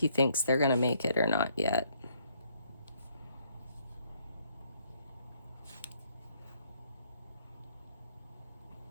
thinks they're gonna make it or not yet.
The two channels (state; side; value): inverted; both; correlation -0.69